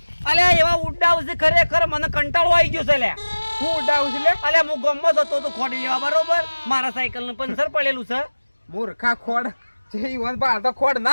અલ્યા એવા ઉડાવ છે ખરેખર મને કંટાળો આવી ગયો છે લ્યા હું ઉડાવું છું લે અલ્યા હું ગમત હતો તો ખોડી લેવા બરોબર મારા સાયકલ નું પંચર પડેલું છે મૂર્ખા ખોડ જે વન બહાર તો ખોડ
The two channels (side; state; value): both; inverted; correlation -1.00